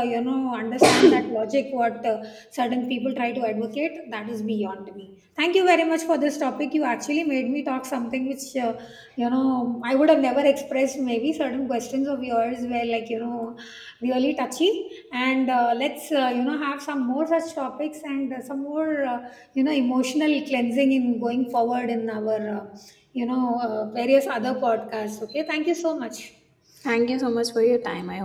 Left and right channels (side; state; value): both; identical; correlation 1.00